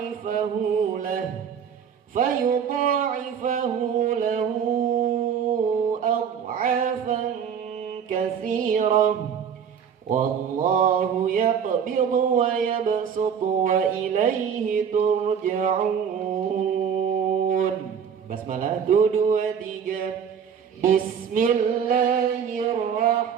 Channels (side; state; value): left; quieter; 7.6 dB